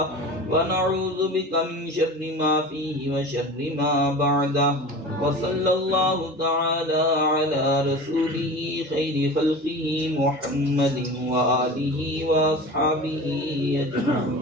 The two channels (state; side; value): normal; both; correlation 0.34